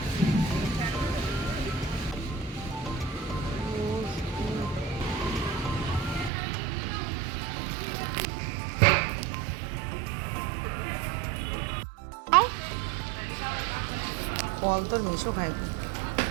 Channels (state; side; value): drops out; left; at 6.3 s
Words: ফল তোর মেশো খাইব